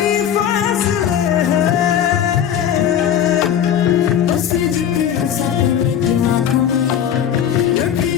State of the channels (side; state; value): right; quieter; 9.3 dB